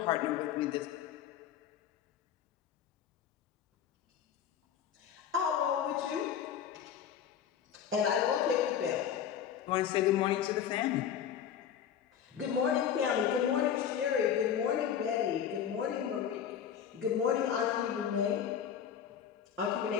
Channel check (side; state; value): right; quieter; 8.8 dB